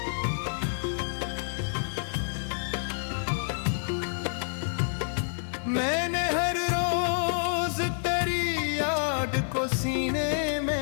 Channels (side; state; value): right; silent; digital silence